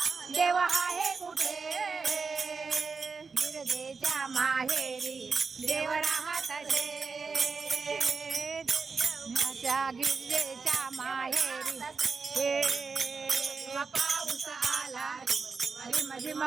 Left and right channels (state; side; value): quieter; left; 4.9 dB